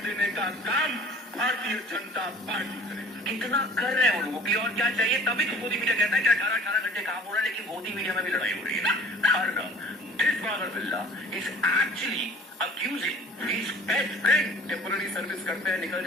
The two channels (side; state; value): both; normal; correlation 0.48